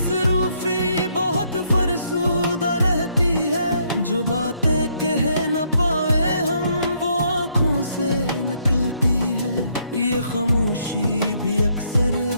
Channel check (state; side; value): inverted; both; correlation -0.71